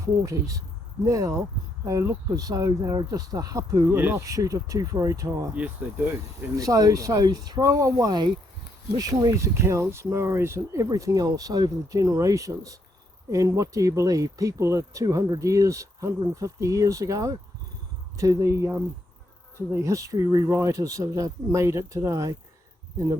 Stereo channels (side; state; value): both; normal; correlation 0.76